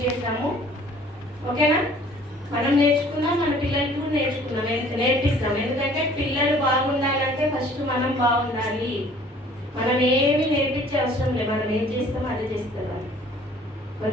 చేద్దాము. ఓకేనా? మనం నేర్చుకున్నాం, మన పిల్లలకి కూడా నేర్పిస్తాం. ఎందుకంటే పిల్లలు బాగుండాలంటే ఫస్ట్ మనం బాగుండాలి. మనం ఏమి నేర్పించే అవసరం లేదు, మనం ఏం చేస్తామో అదే చేస్తాం.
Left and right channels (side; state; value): both; normal; correlation 0.53